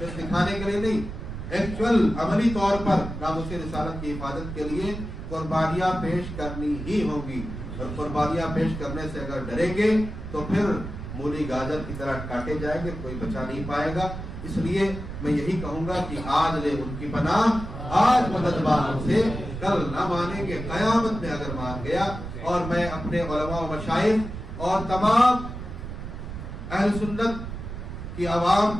دکھانے کے لیے نہیں، ایکچوئل عملی طور پر ناموس رسالت کی حفاظت کے لیے قربانیاں پیش کرنی ہی ہوں گی، اور قربانیاں پیش کرنے سے اگر ڈریں گے تو پھر مولی گاجر کی طرح کاٹے جائیں گے، کوئی بچا نہیں پائے گا۔ اس لیے میں یہی کہوں گا کہ آج لے ان کی پناہ، آج مددبان سے کل نہ مانیں گے، قیامت میں اگر مان گیا۔ اور میں اپنے علماء و مشائخ اور تمام اہل سنت کی عوام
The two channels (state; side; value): noise; right; rumble, 8 dB below the sound